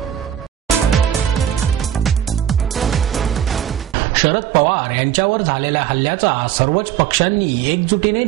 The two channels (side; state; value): left; quieter; 10.5 dB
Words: शरद पवार यांच्यावर झालेल्या हल्ल्याचा सर्वच पक्षांनी एकजुटीने